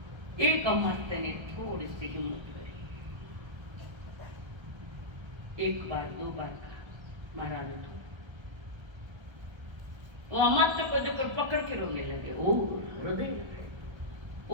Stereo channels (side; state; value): left; late; 1.3 ms